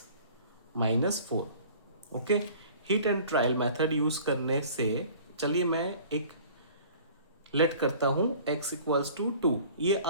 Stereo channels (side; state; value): both; inverted; correlation -0.47